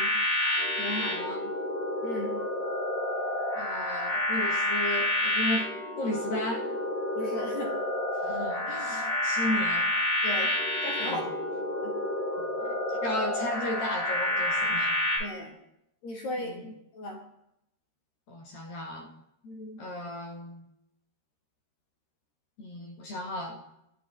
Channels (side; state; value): right; late; 13 ms